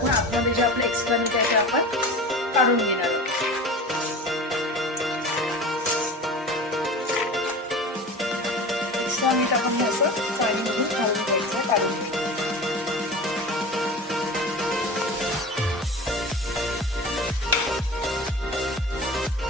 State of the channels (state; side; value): normal; both; correlation 0.33